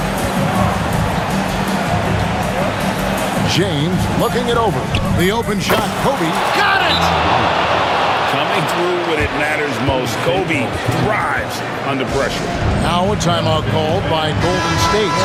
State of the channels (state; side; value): identical; both; correlation 1.00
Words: James looking it over. The open shot. Kobe got it! Coming through when it matters most. Kobe thrives under pressure. Now a timeout called by Golden State.